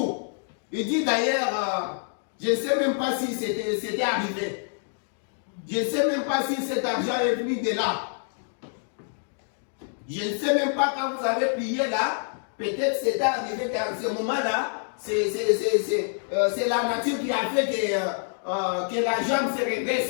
Il dit d'ailleurs, je ne sais même pas si c'était arrivé. Je ne sais même pas si cet argent est venu de là. Je ne sais même pas quand vous avez prié là, peut-être c'était arrivé qu'à ce moment-là, c'est la nature qui a fait que la jambe se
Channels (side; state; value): right; silent; 60 dB below the other